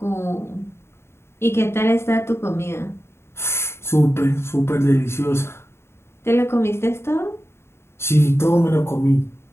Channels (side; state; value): right; late; 0.12 ms